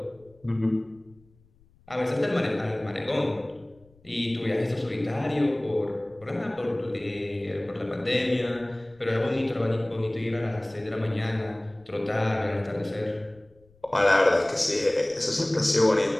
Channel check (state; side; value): noise; left; rumble, 30 dB below the sound